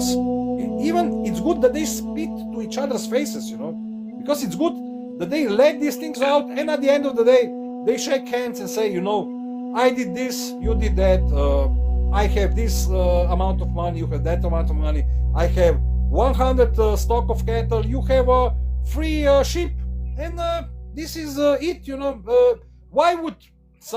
even it's good that they spit to each other's faces, because it's good that they let these things out, and at the end of the day, they shake hands and say, I did this, you did that, I have this amount of money, you have that amount of money, I have 100 stock of cattle, you have 3 sheep, and this is it. Why would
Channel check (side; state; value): both; identical; correlation 1.00